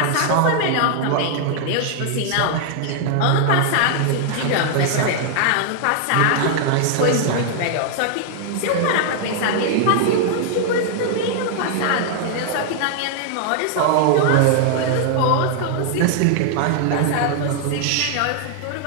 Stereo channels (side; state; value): both; different; correlation 0.00